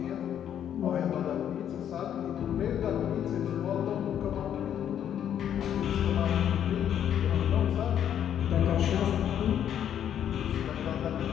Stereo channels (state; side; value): quieter; right; 9.7 dB